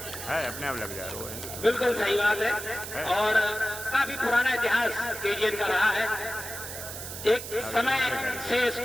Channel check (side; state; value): right; noise; hiss, 9 dB below the sound